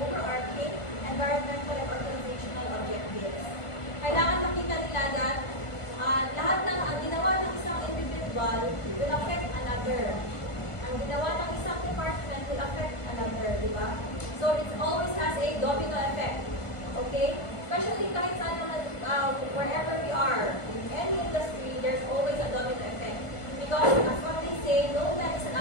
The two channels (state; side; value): late; right; 1.5 ms